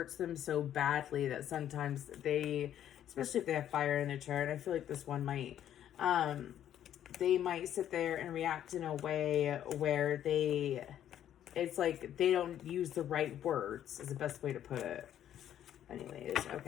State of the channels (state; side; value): quieter; right; 10.7 dB